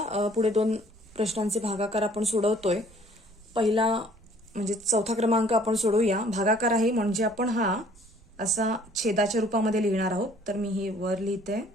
पुढे 2 प्रश्नांचे भागाकार आपण सोडवतोय. पहिला म्हणजे 4था क्रमांक आपण सोडवूया. भागाकार आहे म्हणजे आपण हा असा छेदाच्या रूपामध्ये लिहिणार आहोत. तर मी हे वर लिहिते,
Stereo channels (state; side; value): noise; right; rumble, 26 dB below the sound